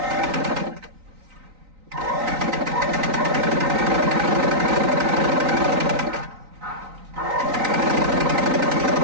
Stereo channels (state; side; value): late; left; 3.9 ms